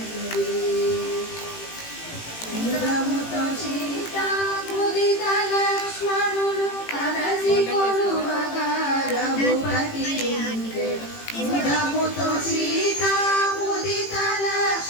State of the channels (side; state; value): right; late; 18 ms